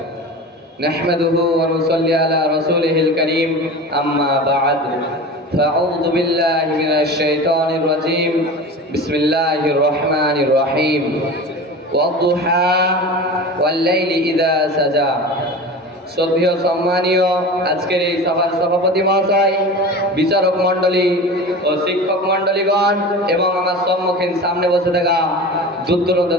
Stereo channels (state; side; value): normal; both; correlation 0.33